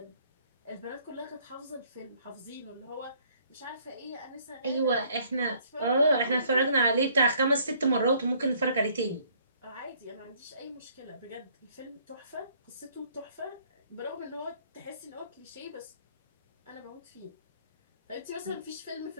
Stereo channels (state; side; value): inverted; both; correlation -0.62